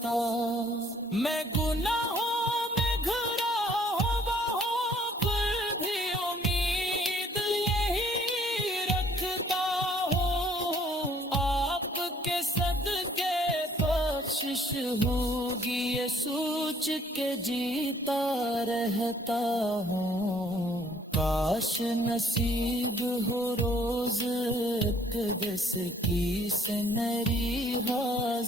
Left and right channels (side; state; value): both; normal; correlation 0.61